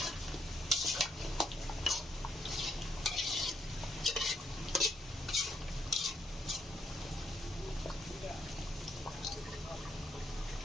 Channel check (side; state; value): both; normal; correlation 0.75